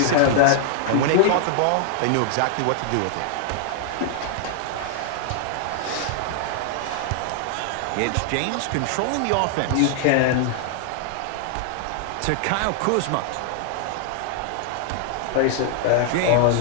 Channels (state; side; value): different; both; correlation 0.00